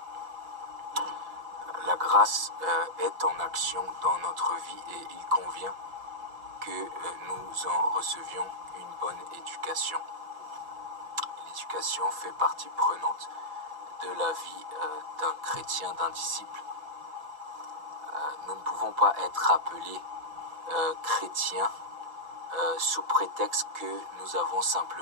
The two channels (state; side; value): late; left; 5.6 ms